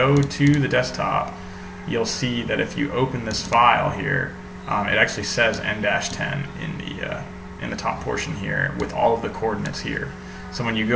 to the desktop, you'll see that if you open this file here, it actually says N-10 in the top portion here with all of the coordinates here. So when you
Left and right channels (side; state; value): both; identical; correlation 1.00